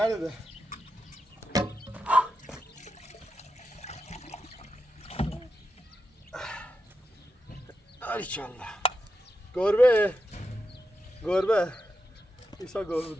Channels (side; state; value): both; normal; correlation 0.87